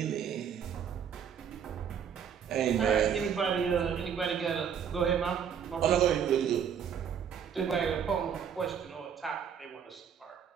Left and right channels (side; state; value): left; quieter; 7.8 dB